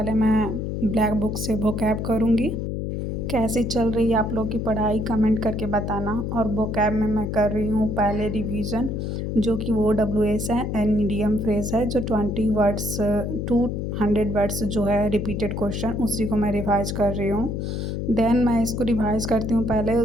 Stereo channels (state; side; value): noise; left; hum, 3 dB below the sound